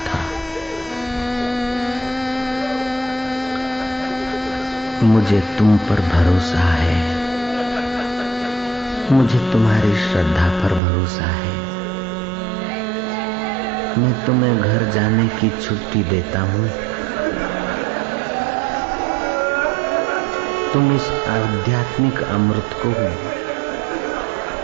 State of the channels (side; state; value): left; drops out; at 10.8 s